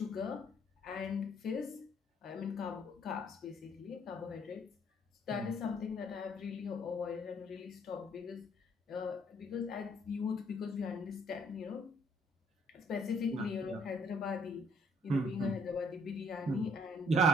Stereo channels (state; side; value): normal; both; correlation 0.64